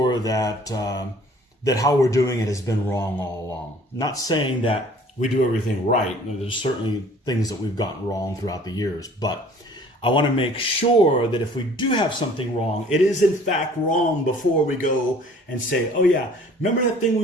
that that how we're doing it has been wrong all along. Not saying that we do everything right. There's certainly things that we've gotten wrong throughout the years, but I want to make sure that if we do have something wrong, it is in fact wrong before we go and say, oh yeah, remember that thing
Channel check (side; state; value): both; normal; correlation 0.52